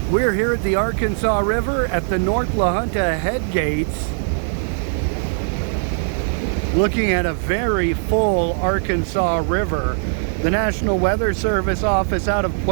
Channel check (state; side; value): silent; left; digital silence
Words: We're here at the Arkansas River at the North La Junta Headgates, looking at a very full Arkansas River. The National Weather Service office out of